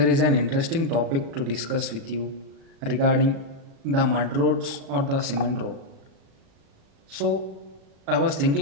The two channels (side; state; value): left; late; 36 ms